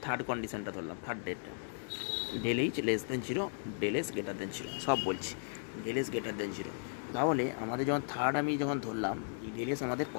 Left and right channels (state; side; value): silent; right; digital silence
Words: থার্ড কন্ডিশনটা ধরলাম, থার্ড ডেটটা del H less than zero, del S greater than zero, সব বলছি del S greater than zero. তাহলে আমাদের যখন থার্ড আমি যখন ধরলাম এই ডেল এস আমাদের